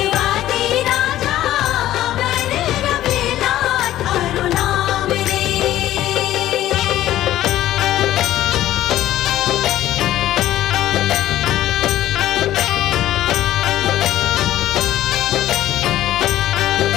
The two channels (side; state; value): right; quieter; 13.7 dB